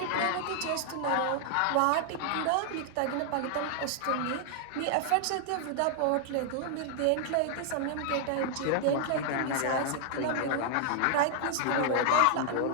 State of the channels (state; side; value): different; both; correlation -0.01